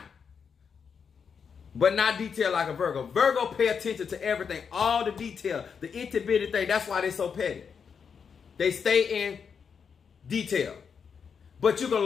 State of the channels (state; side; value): quieter; right; 6.4 dB